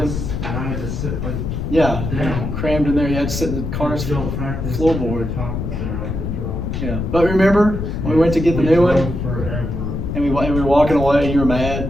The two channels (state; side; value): noise; left; rumble, 4 dB below the sound